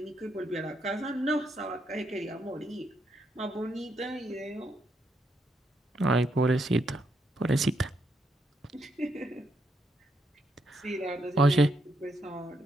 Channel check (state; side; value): normal; both; correlation 0.78